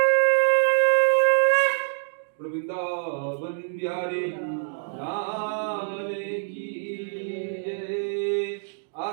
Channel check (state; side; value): silent; left; digital silence